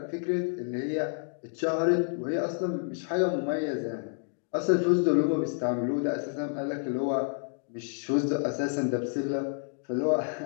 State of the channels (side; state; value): right; silent; digital silence